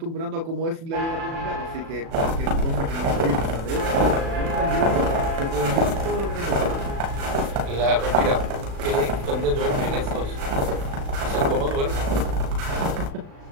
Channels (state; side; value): late; left; 36 ms